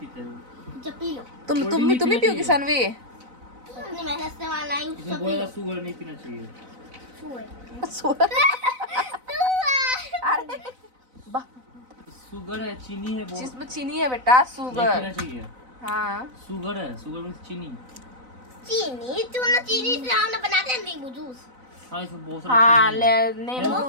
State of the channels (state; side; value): late; left; 4.0 ms